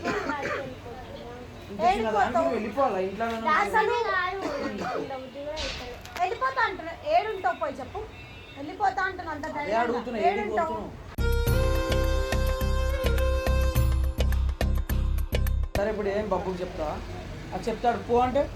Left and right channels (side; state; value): both; identical; correlation 1.00